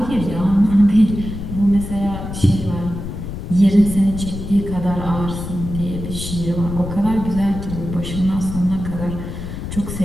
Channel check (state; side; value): noise; left; rumble, 7 dB below the sound